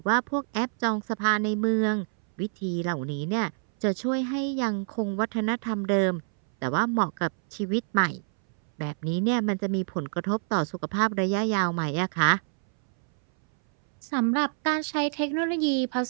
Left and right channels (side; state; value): left; silent; 60 dB below the other